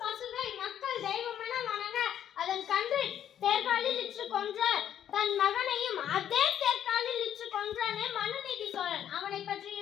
பசுவை மக்கள் தெய்வமென வணங்க அதன் கன்று தேர்காலில் இற்று கொன்ற தன் மகனையும் அதே தேர்காலில் இற்று கொன்றானே மனுநீதி சோழன், அவனை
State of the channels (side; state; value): right; quieter; 10.1 dB